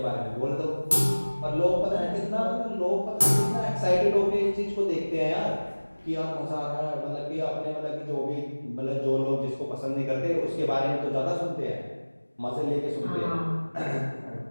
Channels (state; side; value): inverted; both; correlation -1.00